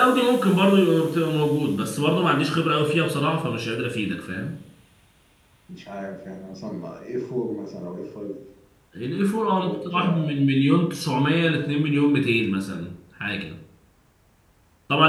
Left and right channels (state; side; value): identical; both; correlation 1.00